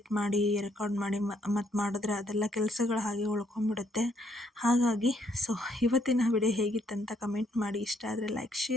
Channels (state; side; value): normal; both; correlation 0.71